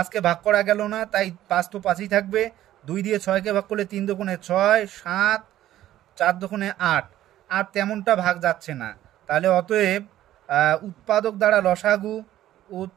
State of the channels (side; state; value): left; quieter; 13.4 dB